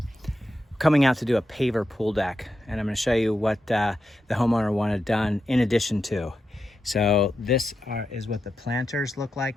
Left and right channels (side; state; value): both; normal; correlation 0.88